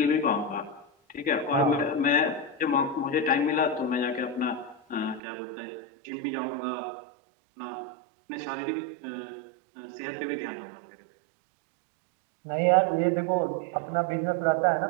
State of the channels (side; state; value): left; drops out; at 5.2 s